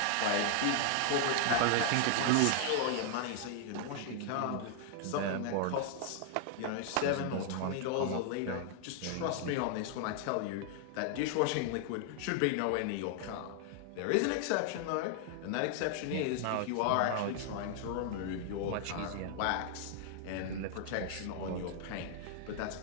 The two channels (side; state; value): both; different; correlation 0.00